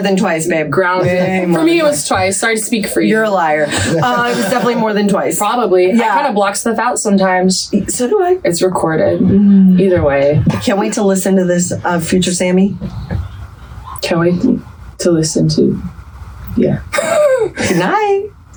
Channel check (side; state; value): both; identical; correlation 1.00